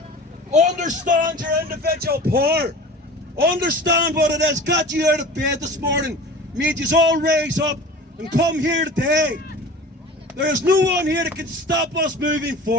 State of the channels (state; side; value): normal; both; correlation 0.38